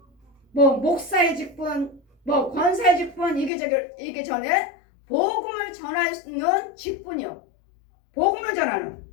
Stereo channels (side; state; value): right; drops out; at 3.5 s